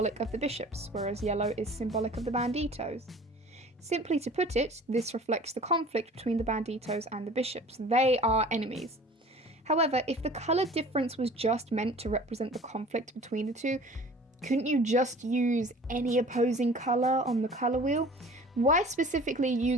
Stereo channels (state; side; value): normal; both; correlation 0.45